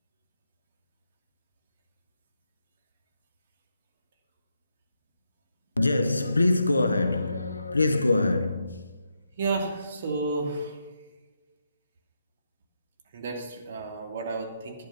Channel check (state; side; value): inverted; both; correlation -0.82